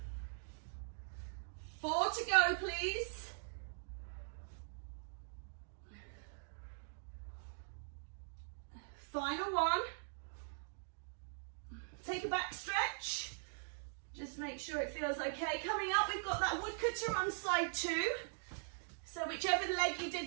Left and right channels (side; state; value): left; silent; digital silence